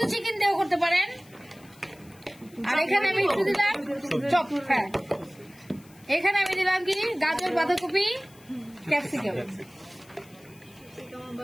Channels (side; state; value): left; noise; hiss, 26 dB below the sound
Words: চিকেন দেও করতে পারেন। আর এখানে আমি একটু দিলাম চপ, হ্যাঁ এখানে আমি দিলাম কি গাজর, বাঁধাকপি, ক্যাপসিকাম।